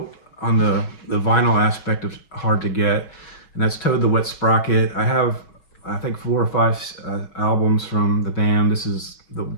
on the vinyl aspect of hard to get, and that's Toad the Wet Sprocket. I have, I think, 4 or 5 albums from the band. This is the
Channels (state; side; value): late; right; 6.1 ms